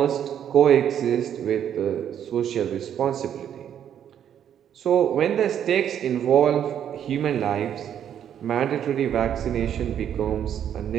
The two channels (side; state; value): left; quieter; 9.5 dB